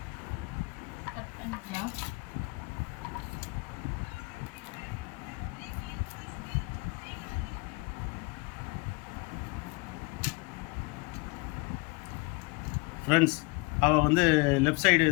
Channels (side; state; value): right; quieter; 28.4 dB